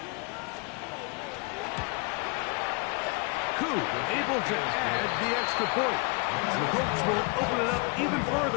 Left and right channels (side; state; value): right; quieter; 30.7 dB